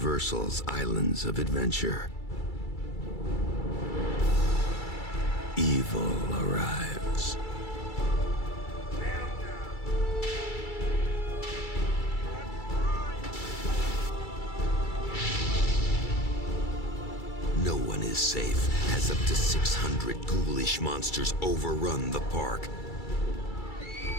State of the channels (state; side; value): late; right; 2.3 ms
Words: Islands of Adventure. Evil arrives. No one is safe as up to 600 ghoulish monsters overrun the park,